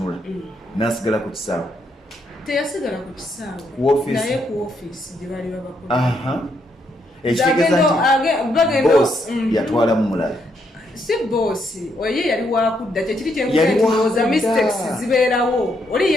n'asigala ku kisaawe teyasigala ku kisaawe naye ku ofiisi gye bali babakola ekitegeeza nti boss yatwalamu mulala si boosi oye yali wakudda kyekiri kyenkuza mistakes zibeerawo oli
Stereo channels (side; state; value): both; normal; correlation 0.76